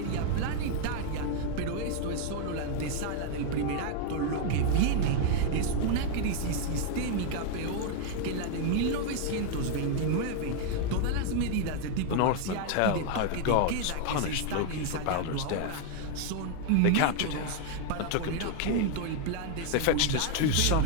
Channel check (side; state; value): both; different; correlation 0.00